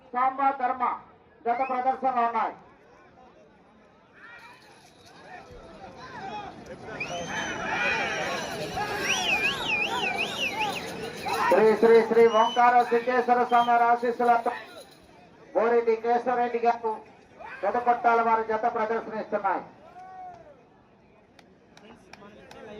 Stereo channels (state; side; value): identical; both; correlation 1.00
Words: సాంబా ధర్మ జత ప్రదర్శనలో ఉన్నాయి. శ్రీ శ్రీ శ్రీ ఓంకార సిద్ధేశ్వర స్వామి ఆశీస్సులతో బోరెడ్డి కేశవరెడ్డి గారు పెదపట్టాల వారి జత ప్రదర్శనిస్తున్నాయి.